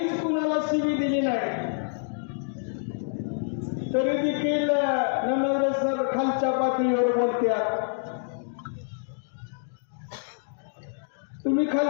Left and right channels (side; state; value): right; silent; digital silence